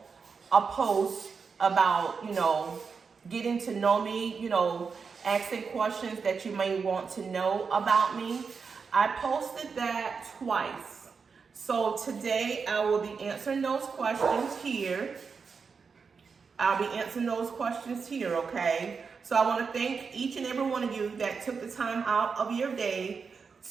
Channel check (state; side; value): quieter; left; 5.4 dB